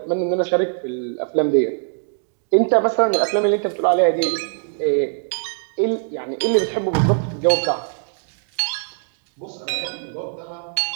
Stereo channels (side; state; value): left; silent; digital silence